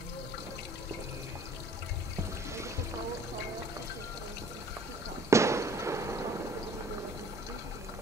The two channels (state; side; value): normal; both; correlation 0.53